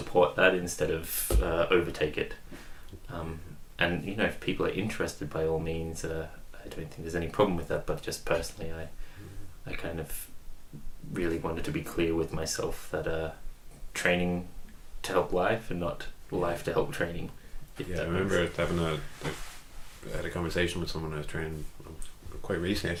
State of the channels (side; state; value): both; identical; correlation 1.00